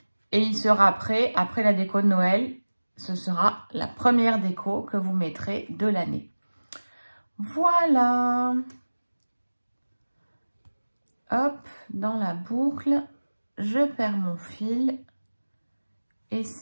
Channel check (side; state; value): both; inverted; correlation -1.00